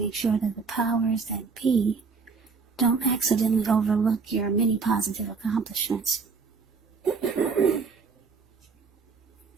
sure that the powers that be don't accidentally overlook your many positive accomplishments.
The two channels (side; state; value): left; quieter; 5.0 dB